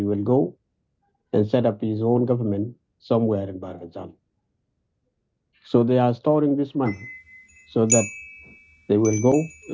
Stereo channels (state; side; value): identical; both; correlation 1.00